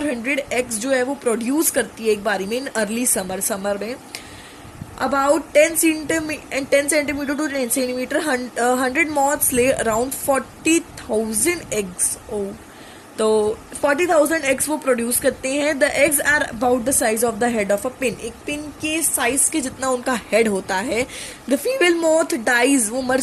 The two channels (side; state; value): both; identical; correlation 1.00